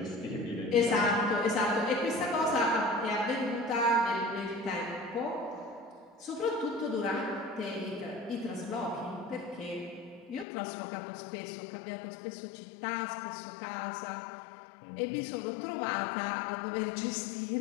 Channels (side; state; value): right; drops out; at 10.5 s